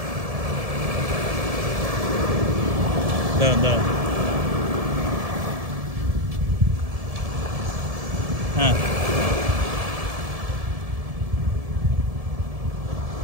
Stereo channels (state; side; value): late; left; 1.7 ms